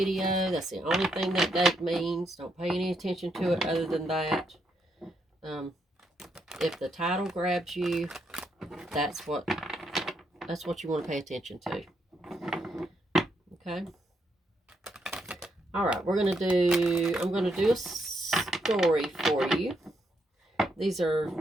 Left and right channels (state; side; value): normal; both; correlation 0.78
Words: That's the only thing that date means. Don't pay any attention to it other than that. If the title grabs you, that's what you want to pay attention to. Okay. All right, I'm going to do a story for you. These are